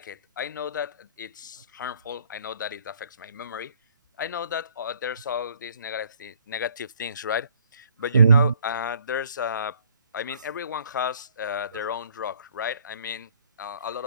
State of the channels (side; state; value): both; inverted; correlation -0.60